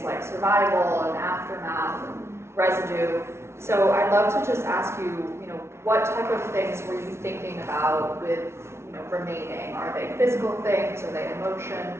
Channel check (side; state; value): left; late; 0.13 ms